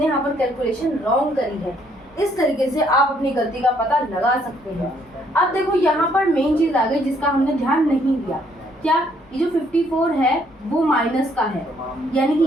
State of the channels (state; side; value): normal; both; correlation 0.67